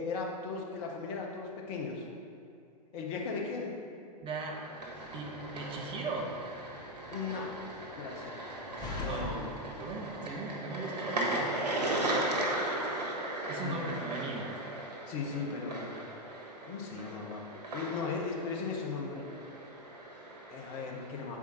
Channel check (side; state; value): both; normal; correlation 0.06